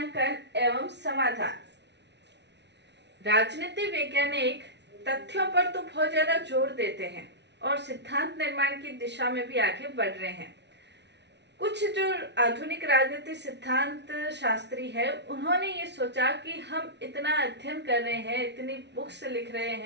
एवं समाधान। राजनीति वैज्ञानिक तथ्यों पर तो बहुत ज्यादा जोर देते हैं और सिद्धांत निर्माण की दिशा में भी आगे बढ़ रहे हैं। कुछ जो आधुनिक राजनीति सिद्धांत शास्त्री है, उन्होंने ये सोचा कि हम इतना अध्ययन कर रहे हैं, इतनी बुक्स लिख रहे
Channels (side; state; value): left; late; 0.50 ms